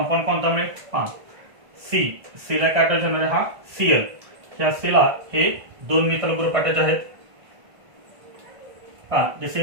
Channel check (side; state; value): left; late; 1.5 ms